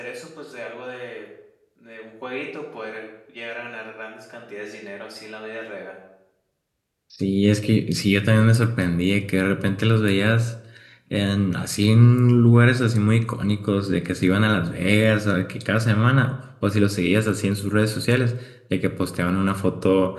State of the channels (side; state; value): both; identical; correlation 1.00